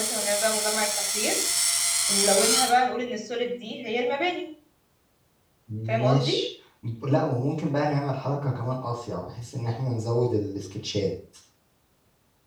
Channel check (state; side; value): identical; both; correlation 1.00